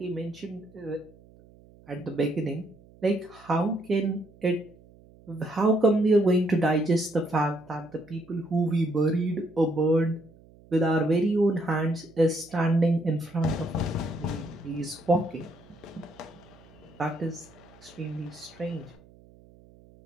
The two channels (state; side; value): noise; right; hum, 25 dB below the sound